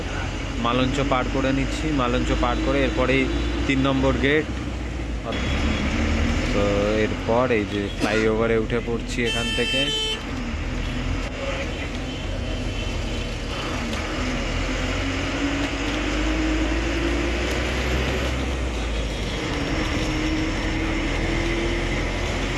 মালঞ্চ পার করে নিচ্ছি। মালঞ্চ পার করে এরপরেই 3 নম্বর গেট। তো এরপর এই যে ফ্লাইওভারে উঠে পড়ছি এখান থেকে।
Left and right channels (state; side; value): identical; both; correlation 1.00